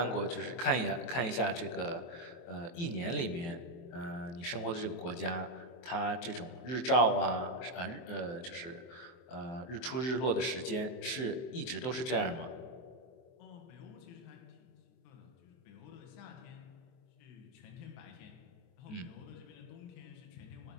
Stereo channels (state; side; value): late; right; 23 ms